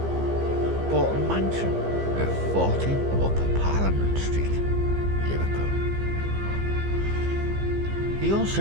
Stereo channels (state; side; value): late; left; 15 ms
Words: bought a mansion at 40 Upper Parliament Street, Liverpool. He